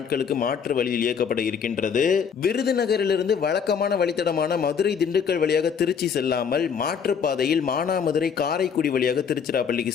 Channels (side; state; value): right; quieter; 6.9 dB